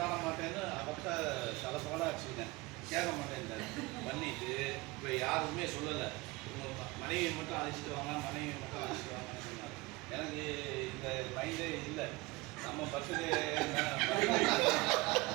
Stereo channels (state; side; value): quieter; left; 23.0 dB